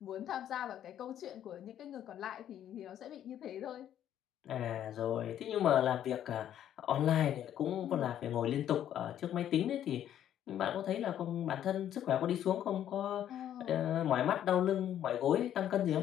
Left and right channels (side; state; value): right; quieter; 10.8 dB